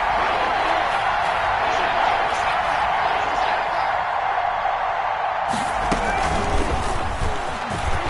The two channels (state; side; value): identical; both; correlation 1.00